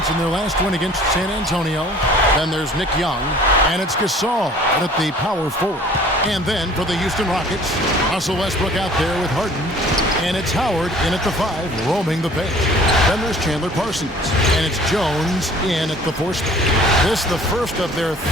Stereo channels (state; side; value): normal; both; correlation 0.51